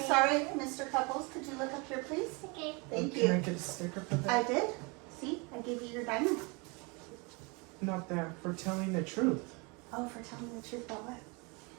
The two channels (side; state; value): left; quieter; 29.5 dB